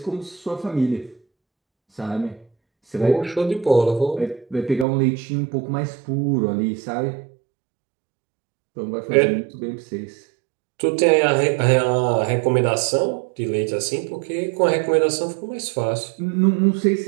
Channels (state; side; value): drops out; left; at 4.9 s